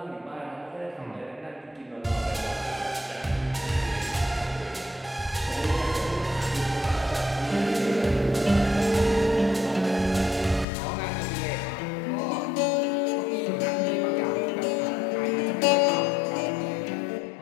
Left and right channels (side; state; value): right; drops out; at 10.7 s